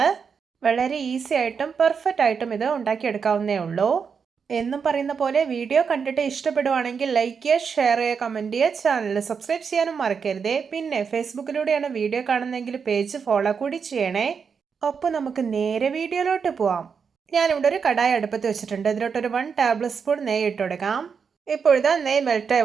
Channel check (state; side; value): quieter; left; 6.1 dB